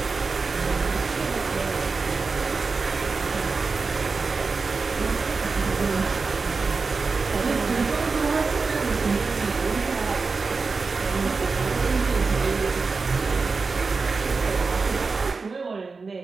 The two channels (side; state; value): left; quieter; 4.4 dB